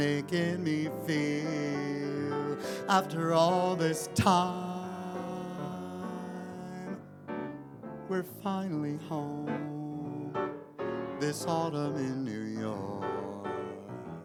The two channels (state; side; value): identical; both; correlation 1.00